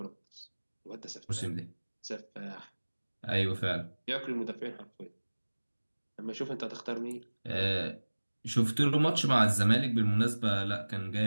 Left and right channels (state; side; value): inverted; both; correlation -1.00